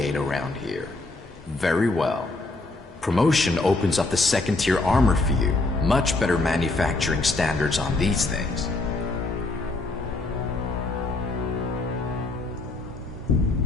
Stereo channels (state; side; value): quieter; right; 3.1 dB